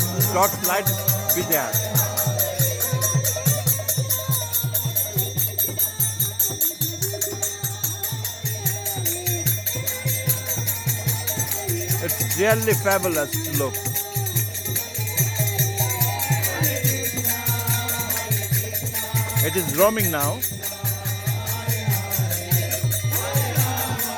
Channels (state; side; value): identical; both; correlation 1.00